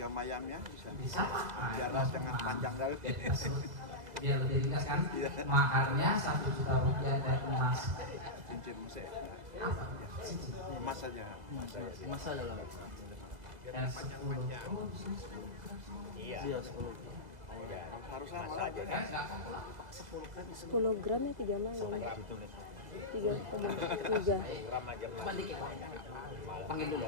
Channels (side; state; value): left; late; 1.9 ms